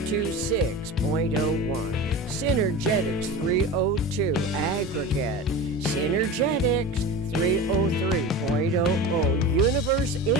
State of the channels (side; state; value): both; normal; correlation 0.30